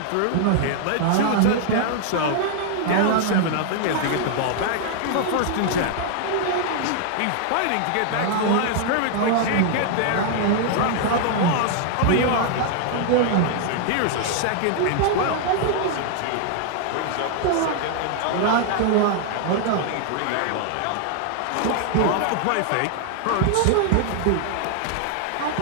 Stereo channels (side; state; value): both; different; correlation 0.00